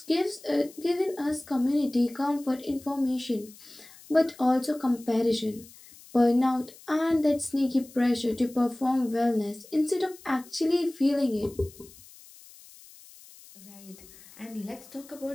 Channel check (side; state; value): left; noise; hiss, 22 dB below the sound